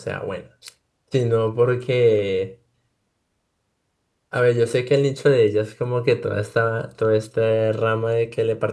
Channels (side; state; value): both; identical; correlation 1.00